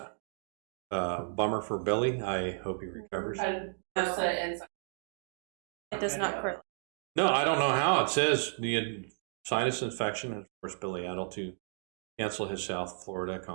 Bummer for Billy. I hope he recovers. It does not correlate. No, I don't know how. It says the sinus infection has forced Billy Idol to cancel his South Florida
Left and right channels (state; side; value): silent; left; digital silence